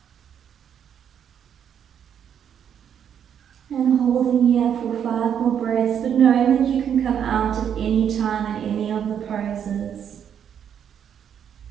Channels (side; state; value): left; quieter; 8.6 dB